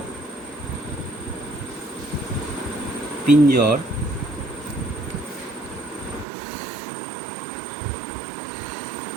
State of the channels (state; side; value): drops out; left; at 6.2 s